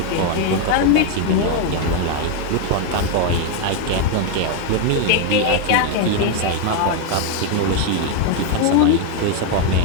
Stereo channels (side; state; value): both; different; correlation 0.01